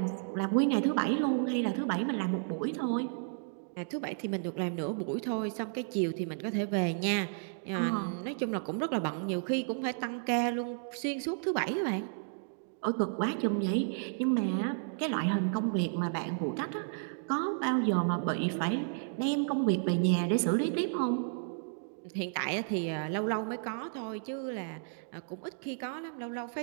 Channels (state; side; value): silent; left; digital silence